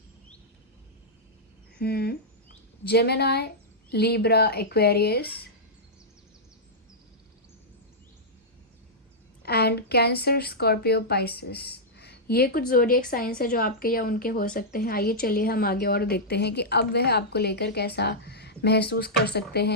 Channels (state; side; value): normal; both; correlation -0.10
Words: Gemini, Libra, Aquarius and cancer, Scorpio, Pisces. ये कुछ ज़ोडिएक साइंस है जो आपके या उनके हो सकते हैं। आइए चलिए हम आगे और देखते हैं कि अब वह आपको लेकर कैसा महसूस कर सकते